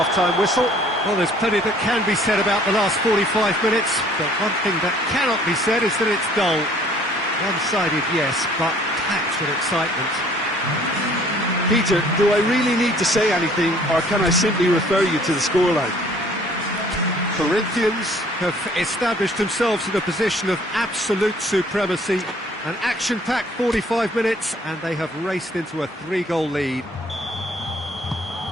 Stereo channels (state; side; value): normal; both; correlation 0.57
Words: whistle. Well, there's plenty that can be said about the last 45 minutes, but one thing that cannot be said is that it's dull. One-sided, yes, but packed with excitement. Peter, do I really need to say anything, or can I simply refer you to the scoreline? Corinthians have established themselves in a position of absolute supremacy. An action-packed 45 minutes, and they have raced into a 3-goal lead.